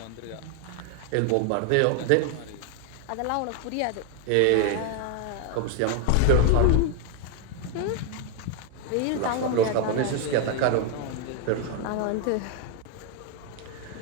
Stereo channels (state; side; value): different; both; correlation 0.01